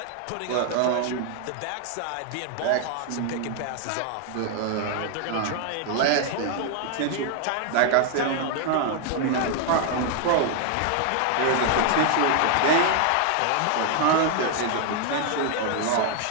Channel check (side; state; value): both; different; correlation 0.00